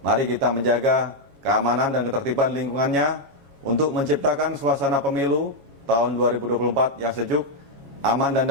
mari kita menjaga keamanan dan ketertiban lingkungannya untuk menciptakan suasana pemilu tahun 2024 yang sejuk, aman dan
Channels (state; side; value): late; left; 7.3 ms